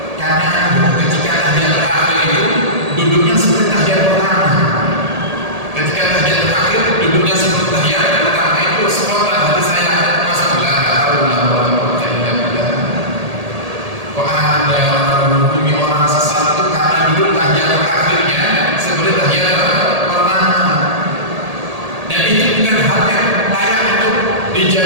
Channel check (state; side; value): late; left; 1.8 ms